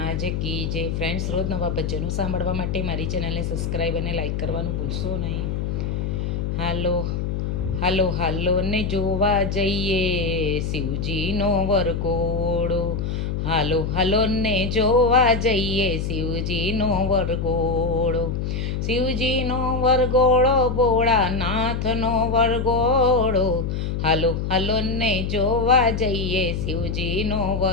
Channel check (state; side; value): noise; left; hum, 2 dB below the sound